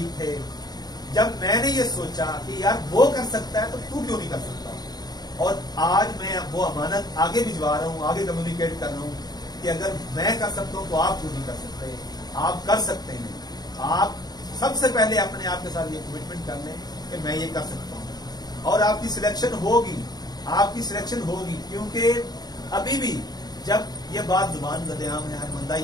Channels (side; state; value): right; late; 0.19 ms